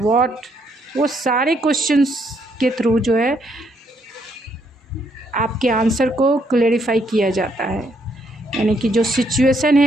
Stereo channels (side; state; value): both; normal; correlation 0.73